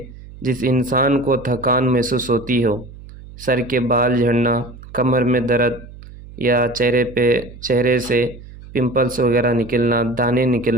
جس انسان کو تھکان محسوس ہوتی ہو، سر کے بال جھڑنا، کمر میں درد، یا چہرے سے پمپلس وغیرہ نکلنا، دانے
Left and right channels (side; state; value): right; noise; hum, 17 dB below the sound